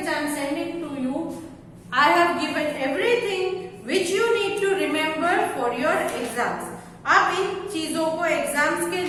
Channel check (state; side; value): identical; both; correlation 1.00